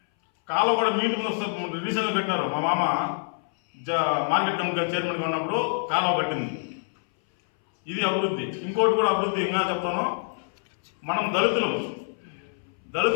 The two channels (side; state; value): right; silent; 60 dB below the other